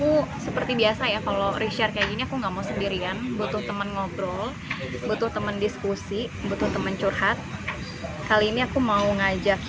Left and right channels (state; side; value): identical; both; correlation 1.00